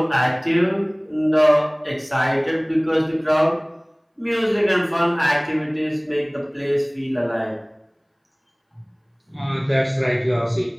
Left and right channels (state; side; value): identical; both; correlation 1.00